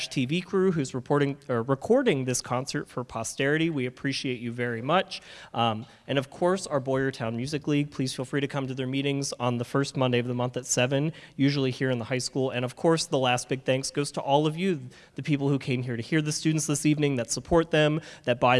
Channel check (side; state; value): both; identical; correlation 1.00